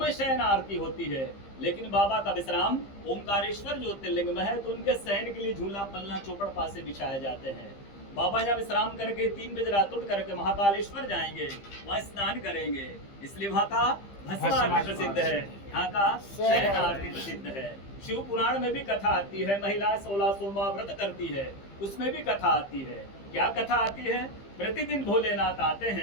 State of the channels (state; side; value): late; right; 15 ms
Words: शयन आरती होती है, लेकिन बाबा का विश्राम ओंकारेश्वर ज्योतिर्लिंग में है, तो उनके शयन के लिए झूला पलना चौपड़ पासे बिछाए जाते हैं। बाबा यहाँ विश्राम करके 3 बजे रात उठ करके महाकालेश्वर जाएंगे, वहाँ स्नान करेंगे। इसलिए वहाँ का भस्म आरती प्रसिद्ध है, यहाँ का शयन आरती प्रसिद्ध है। शिव पुराण में भी कथा आती है, महिला 16 सोमवार व्रत करती है, उसमें भी कथा आती है। क्या कथा आती है? प्रतिदिन भोलेनाथ आते